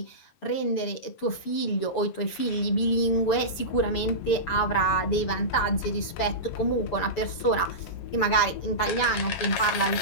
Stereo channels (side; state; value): right; late; 6.9 ms